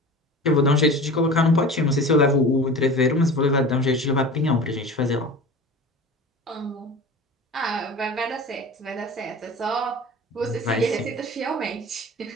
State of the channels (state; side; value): normal; both; correlation 0.36